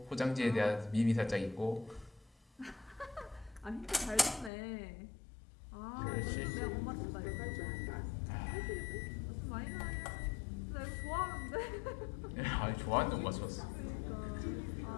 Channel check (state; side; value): drops out; right; at 4.5 s